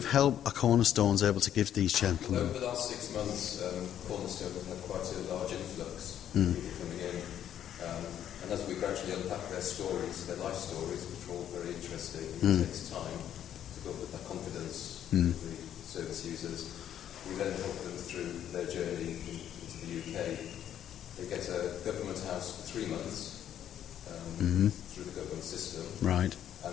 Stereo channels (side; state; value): right; quieter; 10.4 dB